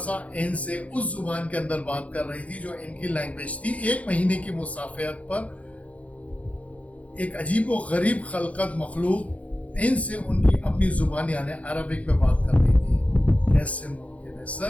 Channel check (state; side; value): late; right; 0.066 ms